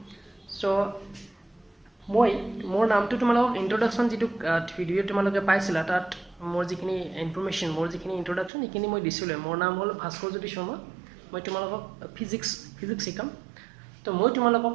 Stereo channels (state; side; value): drops out; left; at 8.5 s